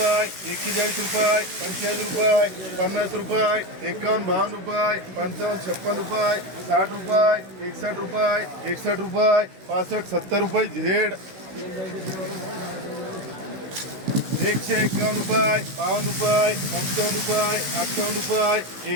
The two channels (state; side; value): late; left; 16 ms